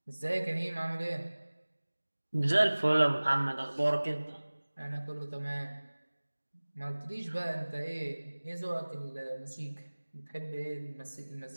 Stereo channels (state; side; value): inverted; both; correlation -1.00